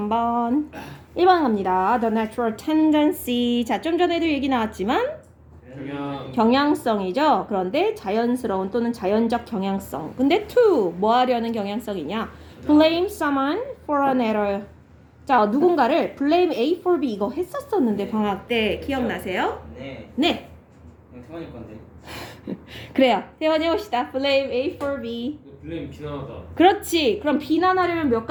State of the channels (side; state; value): both; identical; correlation 1.00